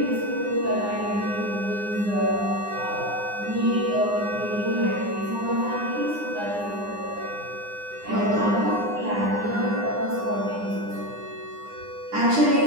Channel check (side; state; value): left; late; 9.8 ms